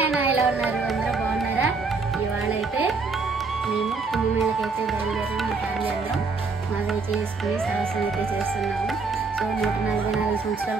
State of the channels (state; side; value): quieter; left; 4.3 dB